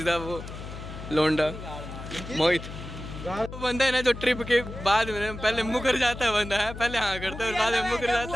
द वो लोंडा मोहित। तो बंदा है ना जो ट्रिप के बाद में पहले मुकर जाता है, बंदा है पहले हाँ करता है और बाद में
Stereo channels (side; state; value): left; noise; hum, 11 dB below the sound